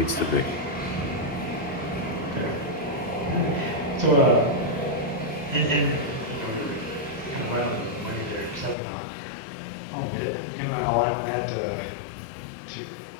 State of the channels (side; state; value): right; drops out; at 8.8 s